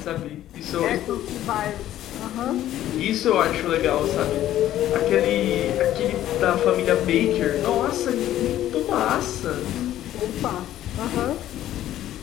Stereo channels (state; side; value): quieter; right; 12.8 dB